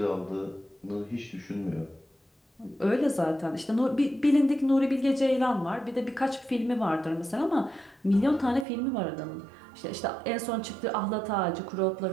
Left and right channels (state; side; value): drops out; left; at 8.7 s